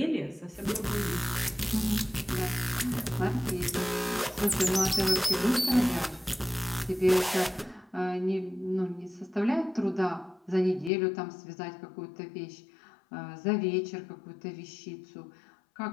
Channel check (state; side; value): drops out; right; at 10.9 s